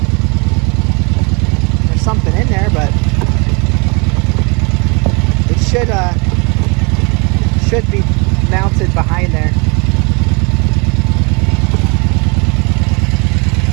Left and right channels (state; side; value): quieter; left; 31.8 dB